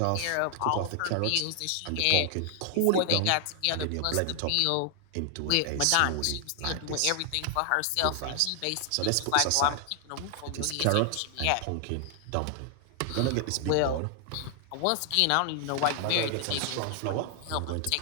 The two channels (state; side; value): different; both; correlation 0.00